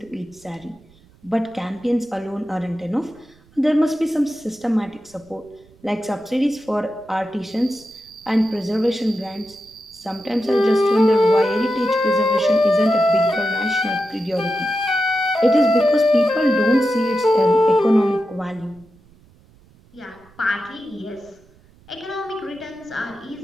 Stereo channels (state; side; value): noise; right; rumble, 28 dB below the sound